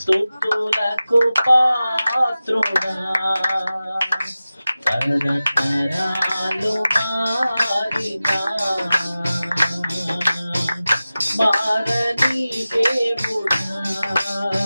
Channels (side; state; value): both; inverted; correlation -0.96